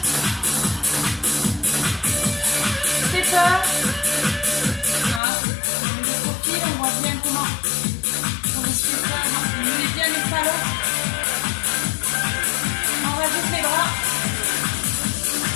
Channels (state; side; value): drops out; right; at 5.2 s